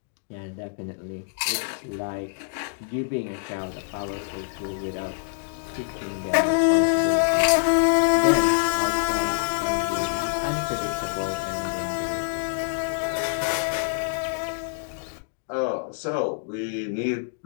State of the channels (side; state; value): right; silent; digital silence